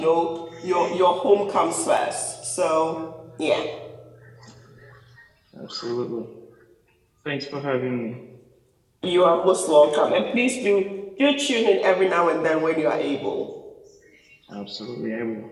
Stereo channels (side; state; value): both; identical; correlation 1.00